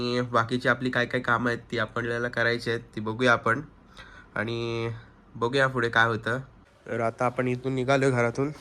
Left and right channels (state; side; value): identical; both; correlation 1.00